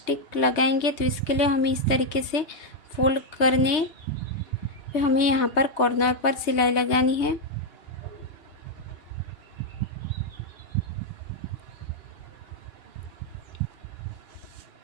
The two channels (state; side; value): late; right; 3.2 ms